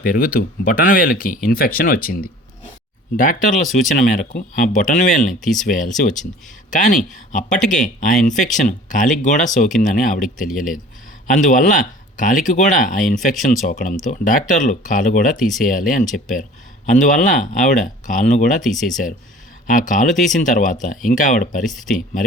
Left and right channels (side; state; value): both; normal; correlation 0.46